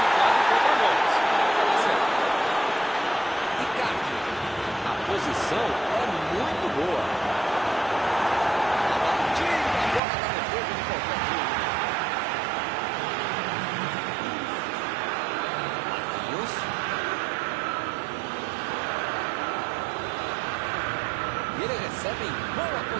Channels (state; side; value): drops out; left; at 10.0 s